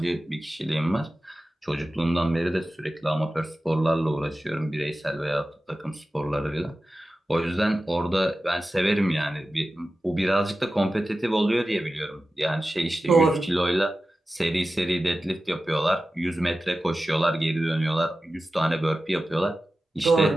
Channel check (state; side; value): normal; both; correlation 0.94